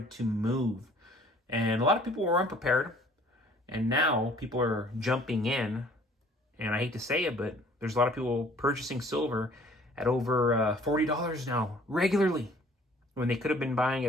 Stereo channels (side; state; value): both; normal; correlation 0.55